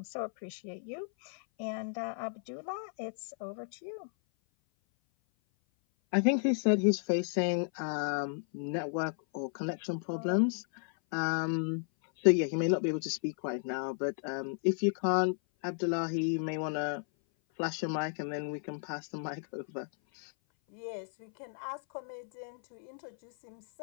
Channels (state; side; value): silent; right; 55 dB below the other